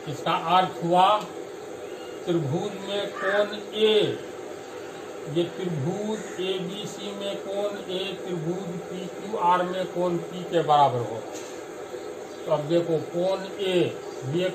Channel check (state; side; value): identical; both; correlation 1.00